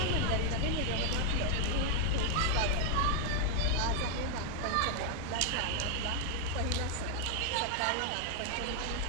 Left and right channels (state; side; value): different; both; correlation 0.00